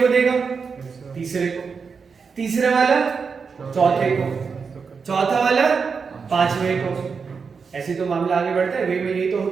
को देगा, तीसरे को, तीसरा वाला चौथे को, चौथा वाला पांचवें को। ऐसे तो मामला आगे बढ़ता है, वेव में यही तो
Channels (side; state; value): left; quieter; 5.5 dB